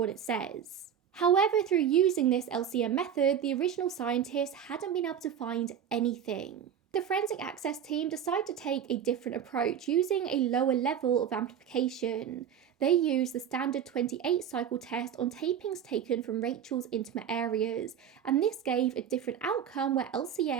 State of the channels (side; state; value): left; quieter; 8.7 dB